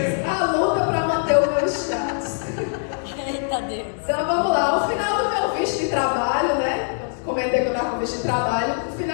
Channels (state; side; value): silent; right; digital silence